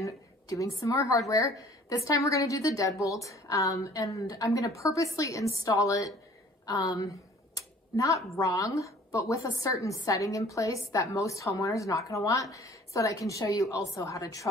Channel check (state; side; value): normal; both; correlation 0.52